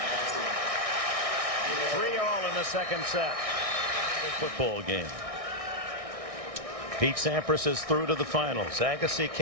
Second set. Football game. Pete Sampras is through to the finals. Agassi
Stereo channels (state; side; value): late; left; 1.6 ms